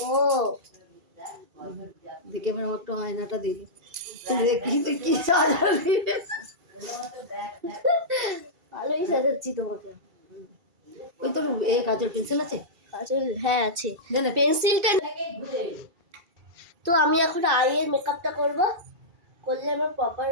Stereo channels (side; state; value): left; late; 2.3 ms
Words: ও দেখে আমার একটা আয়নাটা দিলি, দেখি তুই কি সাজালি। ভালোই সাজাচ্ছি তোমাকে। ওই তোর এ কাজের পেন্সিল আছে? কাজল হ্যাঁ আছে, দে না। পেন্সিলটা। তো আমি এখন আইয়ের মেকআপটা করব, করলে আমি প্রপার